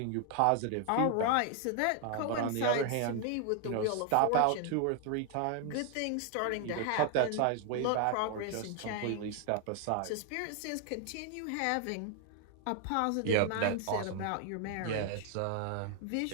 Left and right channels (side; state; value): both; different; correlation 0.00